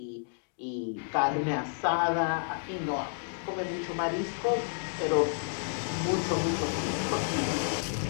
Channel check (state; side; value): silent; right; digital silence